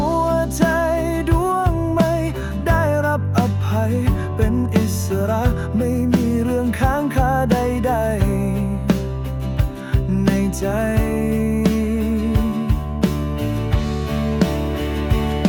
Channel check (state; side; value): identical; both; correlation 1.00